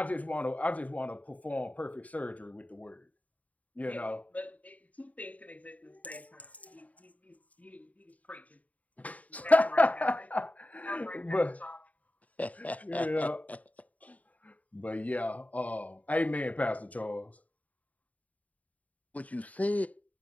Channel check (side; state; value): right; late; 0.071 ms